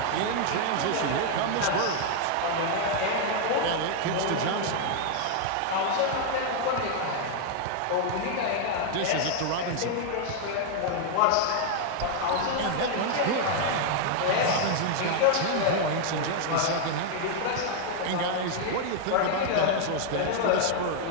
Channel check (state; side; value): different; both; correlation 0.00